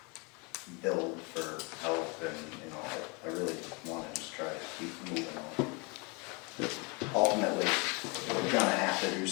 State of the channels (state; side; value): quieter; right; 30.4 dB